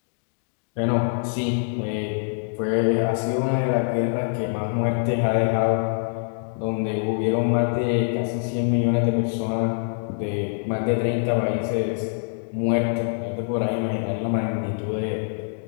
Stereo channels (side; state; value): right; silent; digital silence